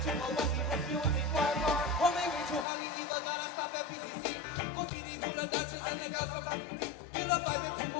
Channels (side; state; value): right; drops out; at 2.7 s